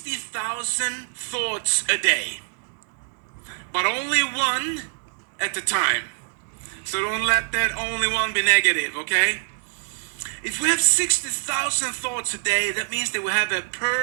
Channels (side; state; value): left; silent; digital silence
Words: thoughts a day, but only one at a time. So don't let that only one be negative, okay? If we have 60,000 thoughts a day, that means that we have a